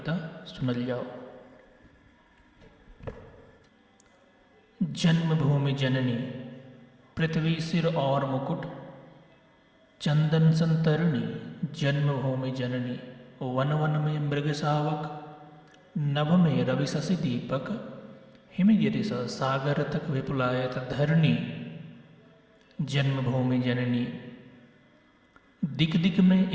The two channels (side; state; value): both; identical; correlation 1.00